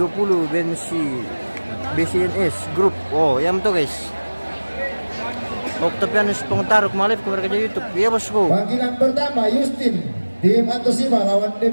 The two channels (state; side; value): inverted; both; correlation -1.00